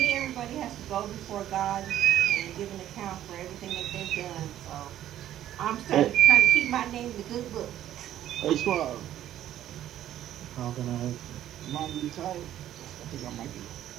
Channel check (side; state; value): left; quieter; 12.0 dB